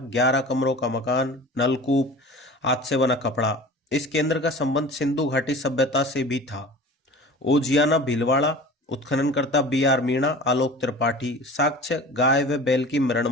11 कमरों का मकान, नलकूप, हाथ से बना कपड़ा। इस केंद्र का संबंध सिंधु घाटी सभ्यता से भी था। ओजियाना भीलवाड़ा, उत्खननकर्ता बी.आर. मीणा, आलोक त्रिपाठी। साक्ष्य: गाय व बैल की मरण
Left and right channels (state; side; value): normal; both; correlation 0.39